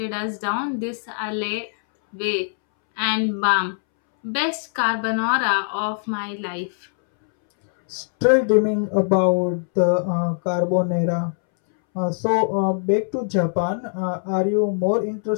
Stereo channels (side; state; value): right; silent; 63 dB below the other